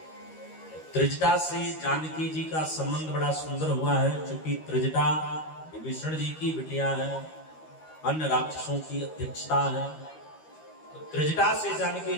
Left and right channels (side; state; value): right; late; 13 ms